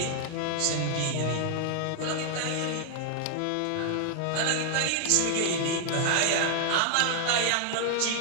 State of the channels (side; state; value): both; different; correlation 0.00